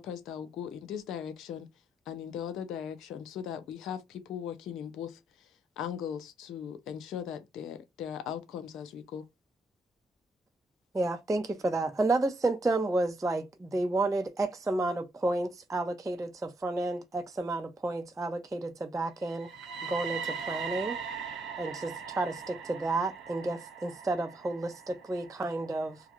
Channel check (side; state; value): both; normal; correlation 0.77